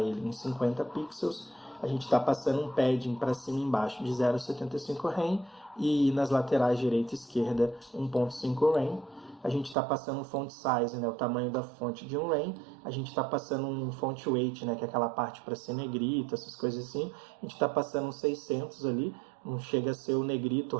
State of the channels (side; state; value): left; drops out; at 9.8 s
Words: ele em 50 pixels. A gente está passando um padding para cima e embaixo de 0,75 rem. e nas laterais direita e esquerda 1.5 rem. A gente está passando um font size, né, o tamanho da fonte de um rem. A gente está passando um font weight, né, que é aquela parte para ser negrito, essas coisas assim. A gente está passando um 600 ali, não chega a ser o negrito